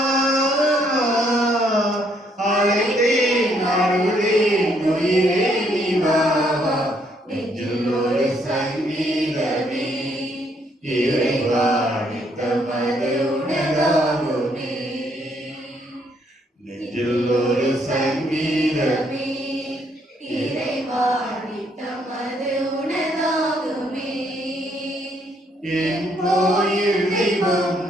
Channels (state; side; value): normal; both; correlation 0.70